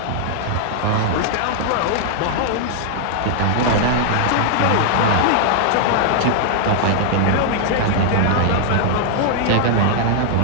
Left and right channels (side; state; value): both; different; correlation -0.01